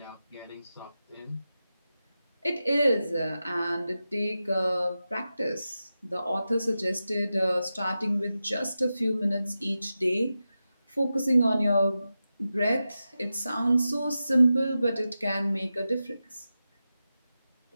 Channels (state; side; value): inverted; both; correlation -0.92